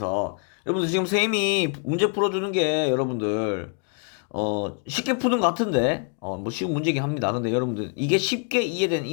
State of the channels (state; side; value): quieter; right; 39.7 dB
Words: 여러분들 지금 선생님이 문제 풀어주는 게 여러분들 쉽게 푸는 것 같은데 뭐 쉬운 문제긴 합니다. 근데 여러분들 이게 쉽게 이해된